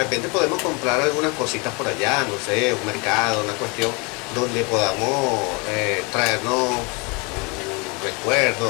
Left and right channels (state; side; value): quieter; right; 30.0 dB